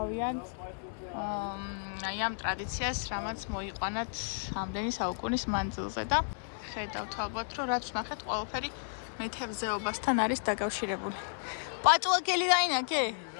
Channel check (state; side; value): silent; right; 56 dB below the other